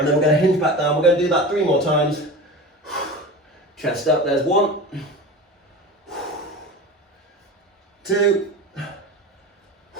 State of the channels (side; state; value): both; normal; correlation 0.31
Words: then we're going to hinge back down. We're going to do that 3 more times. Chest up, there's 1, 2,